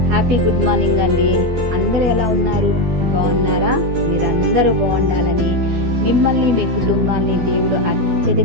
హ్యాపీ గుడ్ మార్నింగ్ అండి. అందరూ ఎలా ఉన్నారు? బాగున్నారా? మీరందరూ బాగుండాలని, మిమ్మల్ని మీ కుటుంబాన్ని దేవుడు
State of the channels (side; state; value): left; late; 12 ms